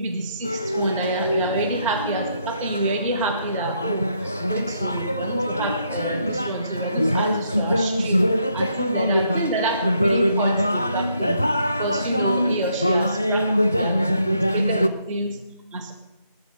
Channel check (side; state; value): both; inverted; correlation -0.73